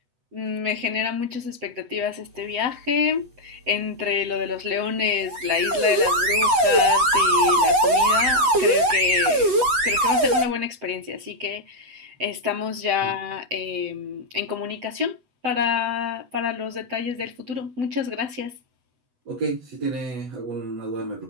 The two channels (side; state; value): left; late; 8.0 ms